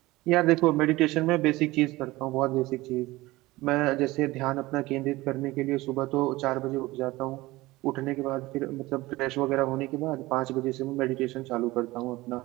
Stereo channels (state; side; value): quieter; left; 19.6 dB